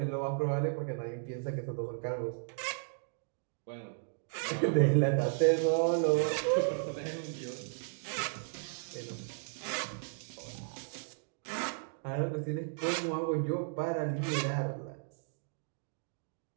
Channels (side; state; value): left; silent; digital silence